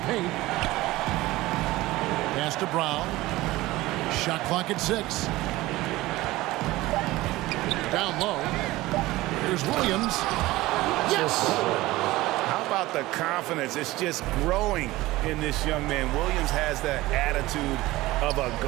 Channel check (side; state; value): left; quieter; 18.4 dB